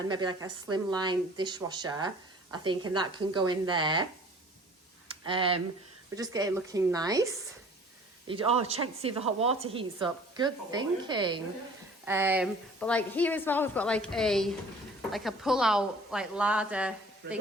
maybe like a slimline dishwasher, I think, and that can go in there. We're just getting looking nice. Check to see if the hot water heats up. Good thinking. But like here as well, we've got like a pull out like ladder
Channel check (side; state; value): both; normal; correlation 0.49